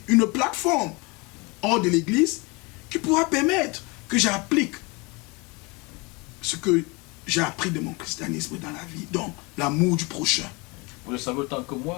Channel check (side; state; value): right; quieter; 27.3 dB